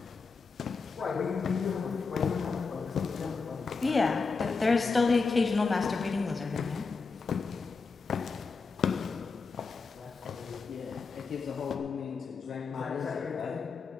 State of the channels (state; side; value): quieter; right; 4.7 dB